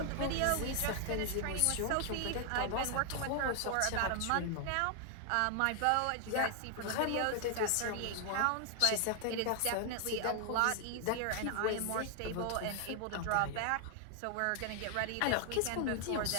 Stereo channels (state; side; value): different; both; correlation 0.00